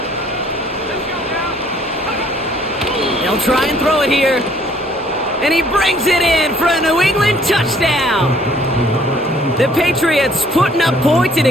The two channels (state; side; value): normal; both; correlation 0.60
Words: They'll try and throw it here. And he brings it in for a New England touchdown. The Patriots putting up points in